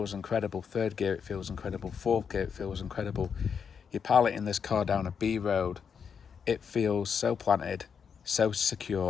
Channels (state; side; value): quieter; right; 6.7 dB